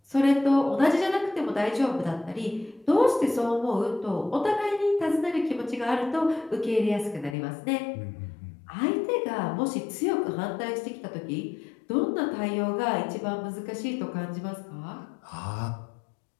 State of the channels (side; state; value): right; drops out; at 7.4 s